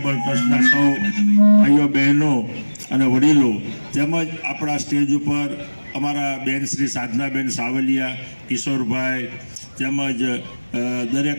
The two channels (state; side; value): inverted; both; correlation -1.00